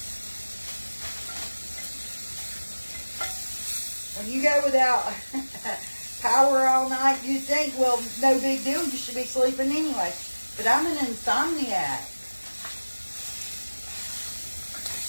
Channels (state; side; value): inverted; both; correlation -1.00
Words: When you go without power all night, you think, well, no big deal, you should be sleeping anyway. But I'm an insomniac.